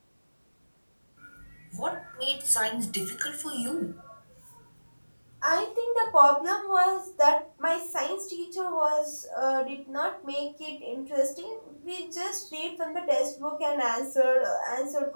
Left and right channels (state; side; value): inverted; both; correlation -1.00